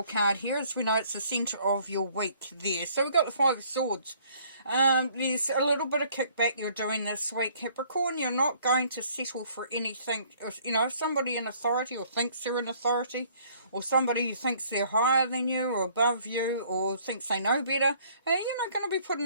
card here. As we know, it's the centre of your week there. So we've got the Five of Swords. There's a little bit of kickback you're doing this week, Capricorn. You're not going to settle for anything. If somebody in authority or thinks they're in authority, or somebody who thinks they're higher than you or above you or thinks they know better, you're not going to be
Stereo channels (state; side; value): inverted; both; correlation -0.59